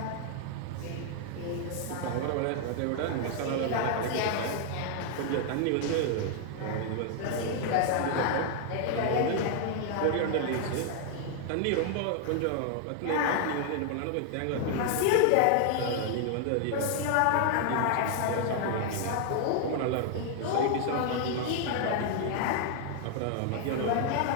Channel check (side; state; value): both; different; correlation 0.00